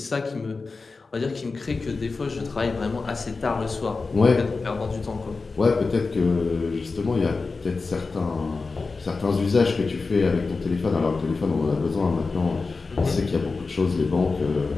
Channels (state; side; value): quieter; right; 4.1 dB